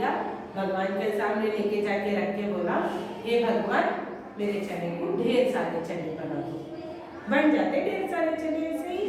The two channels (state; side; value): identical; both; correlation 1.00